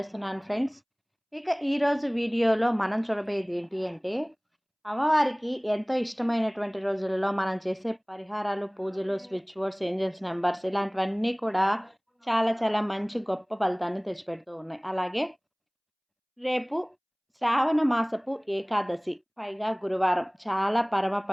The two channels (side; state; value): both; identical; correlation 1.00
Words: ఫ్రెండ్స్. ఇక ఈరోజు వీడియోలో మనం చూడబోయేది ఏంటి అంటే, అమ్మవారికి ఎంతో ఇష్టమైనటువంటి రోజులలో మనం చేసే పరిహారాలు, పూజలు, స్విచ్ బోర్డ్స్, ఏంజల్స్ నెంబర్స్ ఇలాంటివన్నీ కూడా చాలా చాలా మంచి గొప్ప ఫలితాన్ని తెచ్చిపెడుతూ ఉన్నాయి. అలాగే రేపు శ్రావణ మాసపు ఏకాదశి, పైగా గురువారం, చాలా పరమ